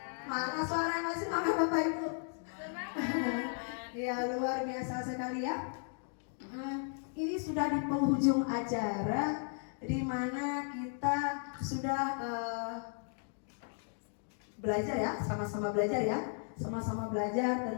Mana suara yang masih semangat Bapak Ibu? Semangat. Ya, luar biasa sekali ya. Ini sudah di penghujung acara, di mana kita sudah belajar ya, sama-sama belajar ya, sama-sama belajar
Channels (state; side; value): silent; right; 54 dB below the other